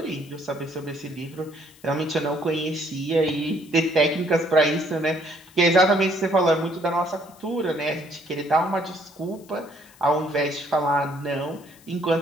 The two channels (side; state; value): left; noise; hiss, 26 dB below the sound